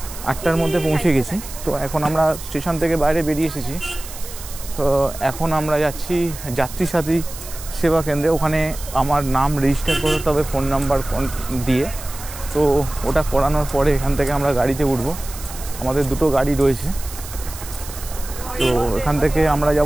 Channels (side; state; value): right; noise; hiss, 13 dB below the sound